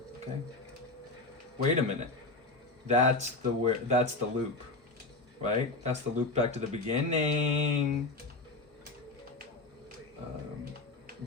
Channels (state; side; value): quieter; right; 3.2 dB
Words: okay. Wait a minute. That's the loop. Right? That's the loop back to the beginning.